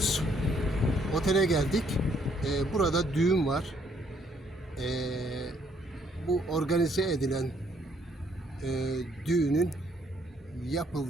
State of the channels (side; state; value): both; normal; correlation 0.68